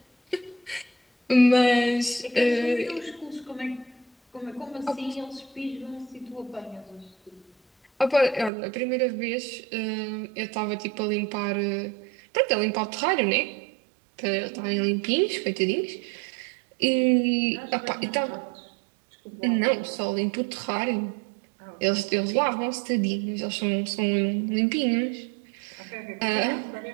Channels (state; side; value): drops out; left; at 8.5 s